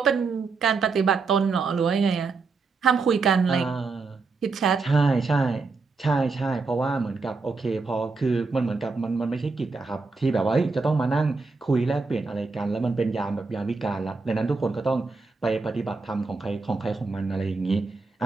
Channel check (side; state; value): left; quieter; 4.2 dB